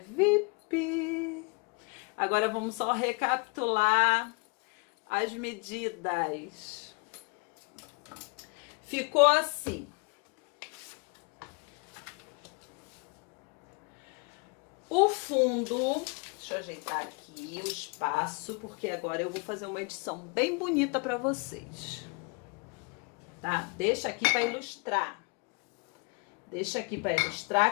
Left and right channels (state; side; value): quieter; right; 31.4 dB